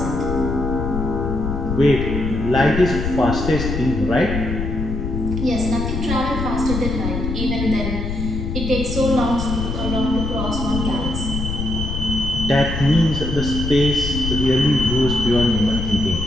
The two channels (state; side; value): noise; left; rumble, 3 dB below the sound